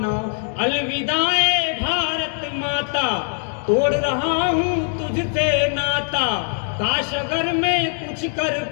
अलविदाए भारत माता तोड़ रहा हूँ तुझसे नाता। काश अगर मैं कुछ कर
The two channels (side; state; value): right; silent; 55 dB below the other